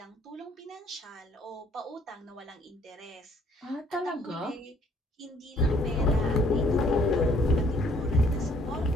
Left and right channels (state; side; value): normal; both; correlation 0.62